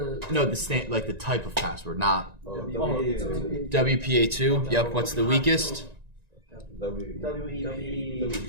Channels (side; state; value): left; late; 1.9 ms